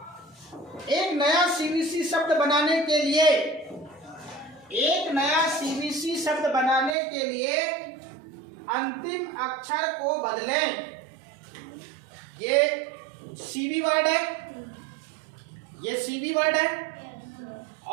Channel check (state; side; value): drops out; left; at 7.0 s